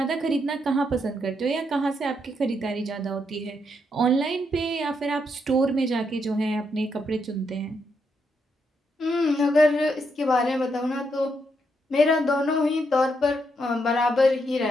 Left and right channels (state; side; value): normal; both; correlation 0.78